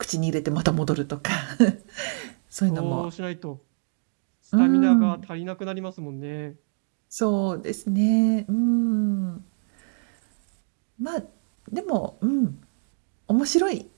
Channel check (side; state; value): left; silent; digital silence